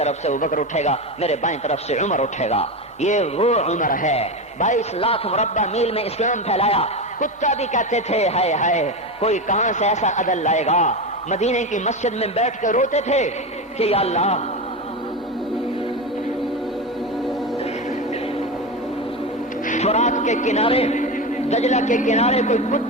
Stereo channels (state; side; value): normal; both; correlation 0.18